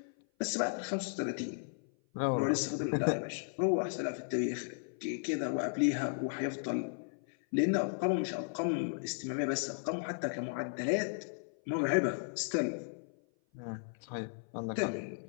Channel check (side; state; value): right; silent; 54 dB below the other